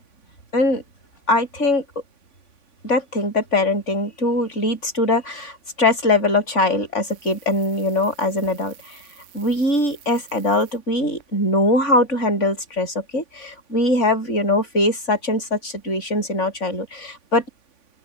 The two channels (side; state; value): right; late; 3.5 ms